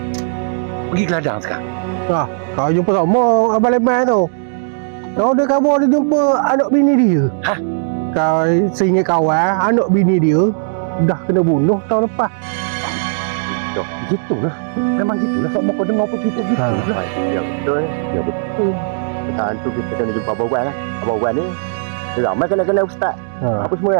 pergi ke ladang sekarang. Kau jumpa sama Abang Leman tu. Kau ada khabar dia jumpa anak bini dia. Hah? Kau seingat kawan, anak bini dia dah kena bunuh tahun lepas. Gitulah. Memang gitulah. Sok kau dengar apa gitu lah. Ya betul. Ya betul. Pasal tu kita kena jumpa Abang Wan lah. Abang Wan ni dia ramai kena ustaz. Apa semua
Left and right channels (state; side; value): silent; left; digital silence